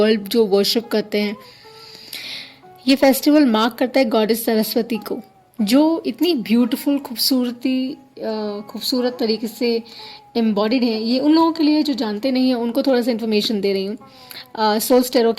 जो वर्शिप करते हैं। ये फेस्टिवल मार्क करता है गॉडेस सरस्वती को, जो इतनी ब्यूटीफुल खूबसूरत तरीके से एम्बॉडीड है। ये उन लोगों के लिए जो जानते नहीं हैं, उनको थोड़ा सा इन्फॉर्मेशन दे रही हूँ सोल्स टेरो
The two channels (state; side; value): identical; both; correlation 1.00